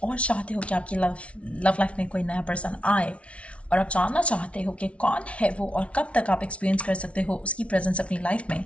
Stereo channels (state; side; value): late; right; 0.062 ms